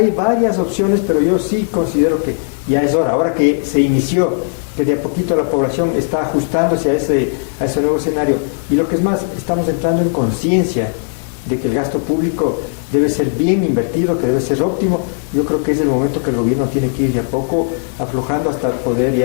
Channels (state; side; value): silent; right; 69 dB below the other